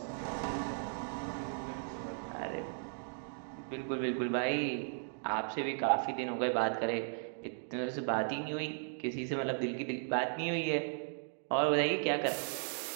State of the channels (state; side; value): silent; left; digital silence